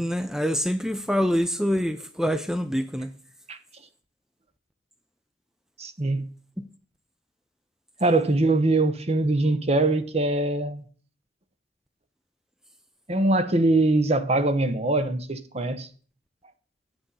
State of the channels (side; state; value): both; normal; correlation 0.63